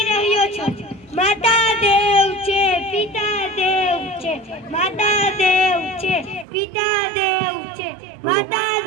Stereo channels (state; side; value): drops out; left; at 6.5 s